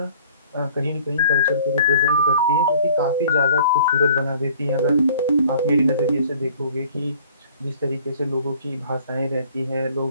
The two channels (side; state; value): both; inverted; correlation -0.52